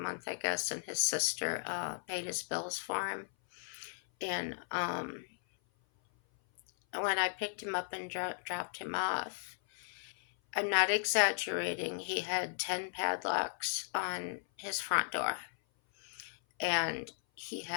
I guess, and his sister paid his bills for him. And when I picked him up and dropped him off, I'm not exaggerating, he had 10 padlocks on his front door. And he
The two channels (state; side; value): silent; right; 54 dB below the other